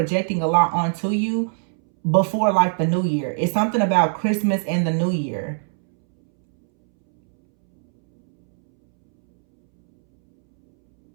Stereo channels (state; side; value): silent; left; 65 dB below the other